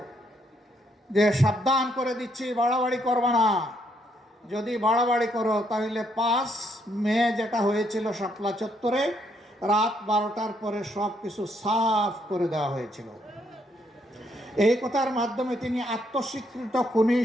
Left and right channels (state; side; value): normal; both; correlation 0.73